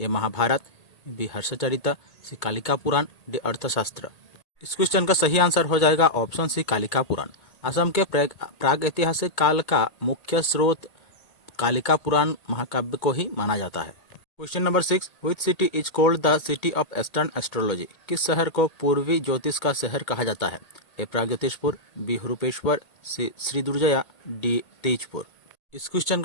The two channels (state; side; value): late; right; 2.2 ms